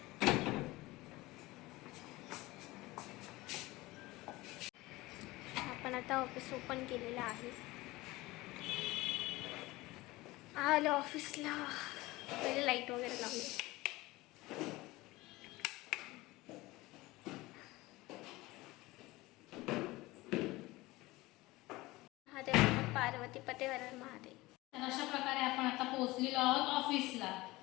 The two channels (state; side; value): quieter; right; 20.1 dB